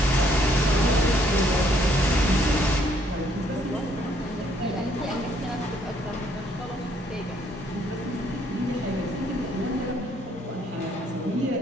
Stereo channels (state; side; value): normal; both; correlation 0.67